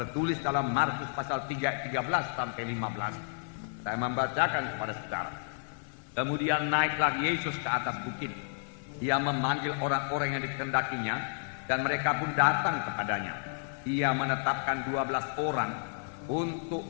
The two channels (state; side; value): silent; right; 57 dB below the other